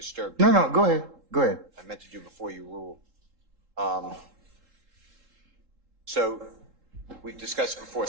you. No, go ahead. Go ahead. I meant to do before you rule. So we've discussed before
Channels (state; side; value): late; left; 3.7 ms